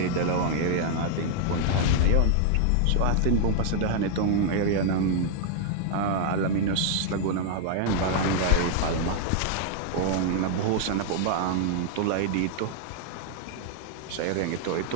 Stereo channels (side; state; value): both; different; correlation 0.00